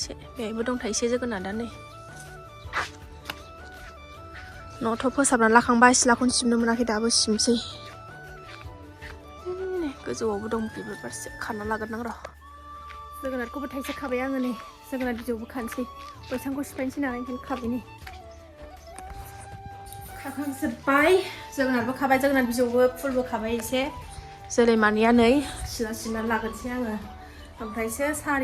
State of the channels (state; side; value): identical; both; correlation 1.00